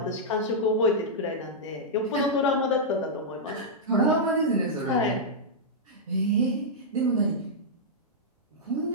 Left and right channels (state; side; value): normal; both; correlation -0.09